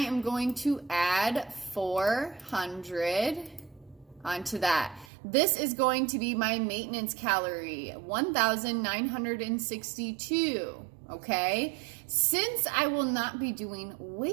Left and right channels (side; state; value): left; drops out; at 5.1 s